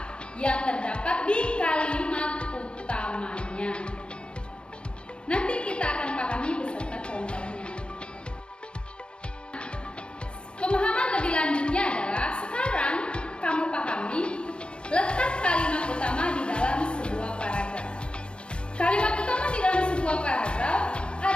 yang terdapat di kalimat utamanya. Nanti kita akan pahami beserta contohnya. Pemahaman lebih lanjutnya adalah sekarang kamu pahami letak kalimat utama di dalam sebuah paragraf. Kalimat utama di dalam sebuah paragraf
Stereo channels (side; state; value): right; late; 0.055 ms